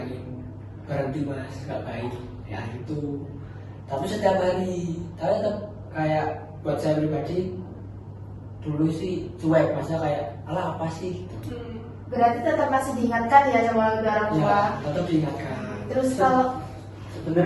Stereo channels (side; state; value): both; identical; correlation 1.00